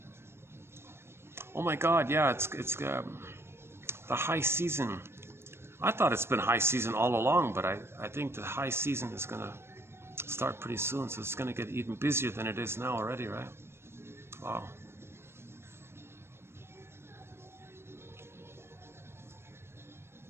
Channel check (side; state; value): left; late; 0.12 ms